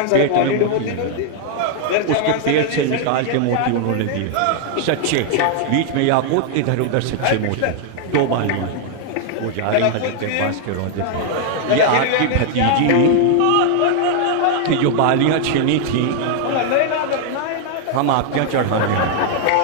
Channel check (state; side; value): different; both; correlation 0.00